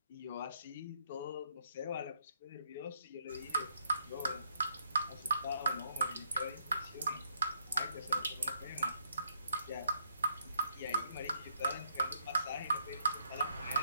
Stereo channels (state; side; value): inverted; both; correlation -0.72